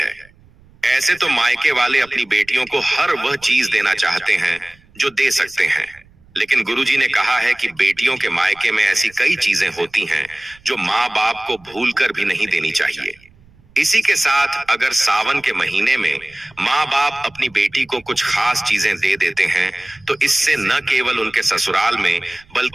ऐसे तो मायके वाले अपनी बेटियों को हर वह चीज देना चाहते हैं जो दे सकते हैं। लेकिन गुरुजी ने कहा है कि बेटियों के मायके में ऐसी कई चीजें होती हैं जो माँ बाप को भूलकर भी नहीं देनी चाहिए। इसी के साथ अगर सावन के महीने में माँ बाप अपनी बेटी को कुछ खास चीजें दे देते हैं, तो इससे न केवल उनके ससुराल में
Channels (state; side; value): noise; right; rumble, 28 dB below the sound